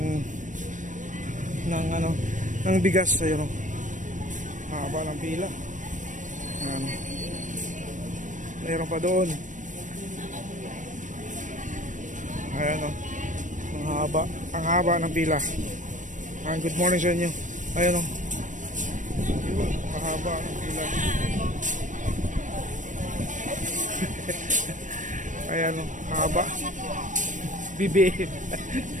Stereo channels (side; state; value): left; late; 0.37 ms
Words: ng bigas. Ayun, mahaba ng pila. Mayroon pa doon. Ayan, ang haba ng pila. Good morning sa inyo. Ayan, mahaba ng pila. Ayan, haba. Bibi.